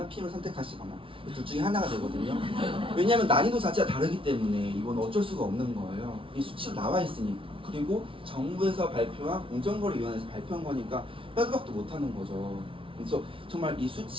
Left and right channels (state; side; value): late; left; 0.25 ms